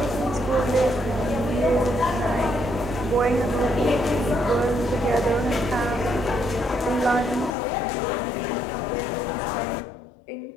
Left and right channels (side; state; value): right; drops out; at 7.6 s